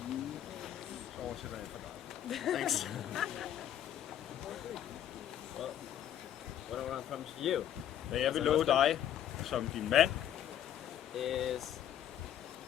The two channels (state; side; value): quieter; right; 10.6 dB